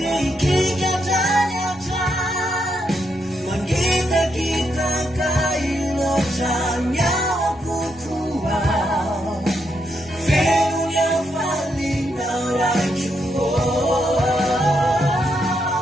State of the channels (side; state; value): both; normal; correlation 0.79